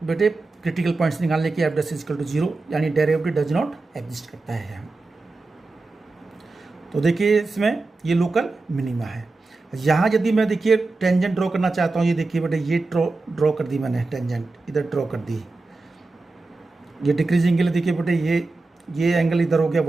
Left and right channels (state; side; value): quieter; left; 3.4 dB